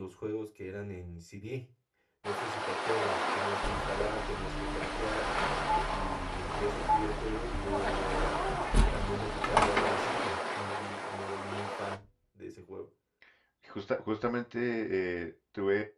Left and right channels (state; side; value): identical; both; correlation 1.00